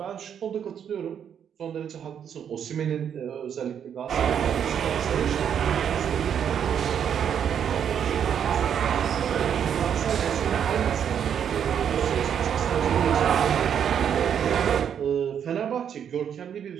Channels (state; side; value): quieter; left; 8.5 dB